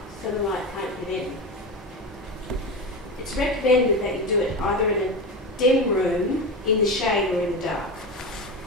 so the light can't get in. It's recommended that you do it either in a dim room, in the shade, or in the dark.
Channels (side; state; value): both; normal; correlation 0.21